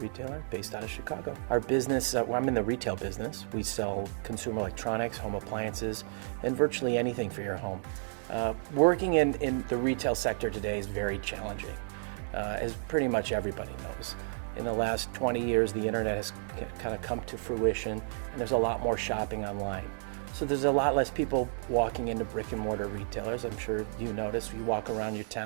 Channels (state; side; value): silent; left; digital silence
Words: based out of Chicago. Our business, I'm in the retail business. We sell consumer electronics, home appliances, and virtually anything for your home. Working in the retail sector today is very challenging, as pretty much everybody knows. In the last 20 years, the internet has kind of come to fruition, and there's a lot more shopping online. So there's a lot less people walking into brick and mortar retailers. I'm sure you notice, you walk around your